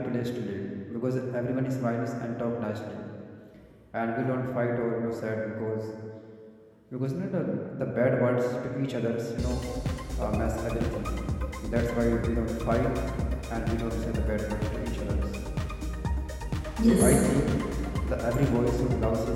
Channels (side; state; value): both; identical; correlation 1.00